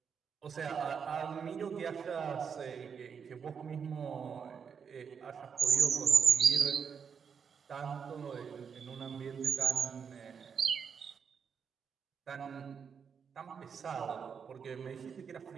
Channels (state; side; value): quieter; left; 6.7 dB